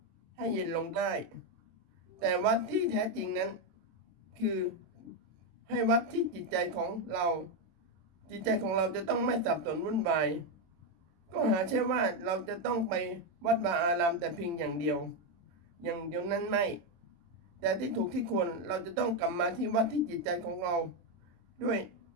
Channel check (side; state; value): left; late; 23 ms